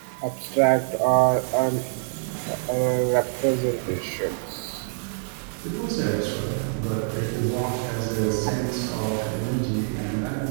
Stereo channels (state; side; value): silent; left; digital silence